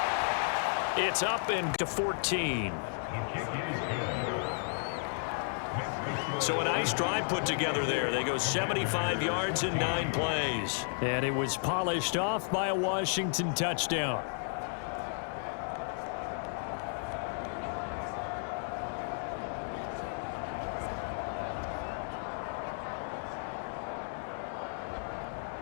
It's up and to 14. So a nice drive put together there. They go 75 yards in 9 plays. And it was polished off by a Washington touchdown.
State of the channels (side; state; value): right; silent; digital silence